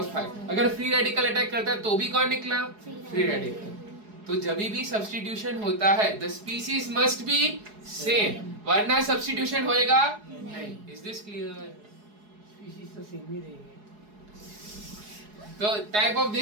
अगर फ्री रेडिकल अटैक करता तो भी कौन निकला? Free radical. तो जब भी सब्स्टिट्यूशन होता है the species must be same, वरना सब्स्टिट्यूशन होएगा नहीं। Is this clear? स्पीसीज तो सेम ही रहेंगे। तो type of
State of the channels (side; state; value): left; late; 4.8 ms